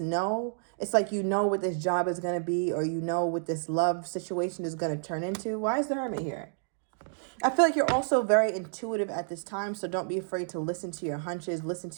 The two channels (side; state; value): left; silent; digital silence